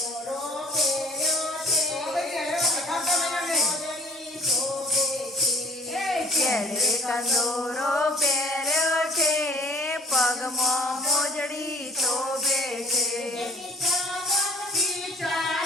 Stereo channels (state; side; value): normal; both; correlation 0.54